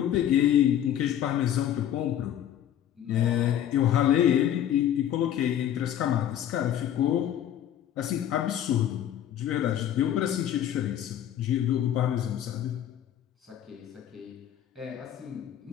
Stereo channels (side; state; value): right; quieter; 10.8 dB